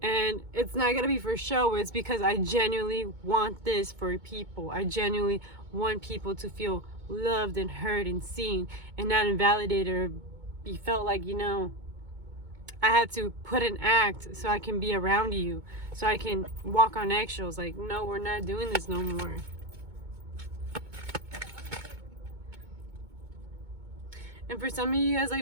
And it's not going to be for show. It's because I genuinely want this for people. I genuinely want people to feel loved and heard and seen, and not invalidated or be felt like, you know, I had to put an act so I can be around you, so I can walk on eggshells. Like, no, we're not doing this no more. And for some of you guys,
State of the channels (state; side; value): late; left; 2.2 ms